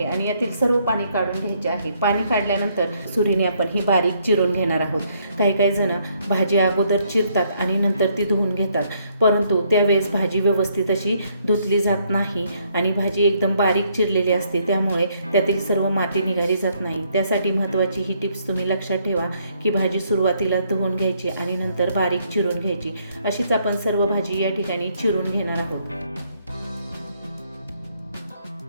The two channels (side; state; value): both; inverted; correlation -0.70